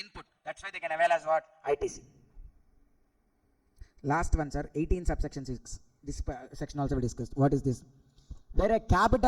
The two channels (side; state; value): both; identical; correlation 1.00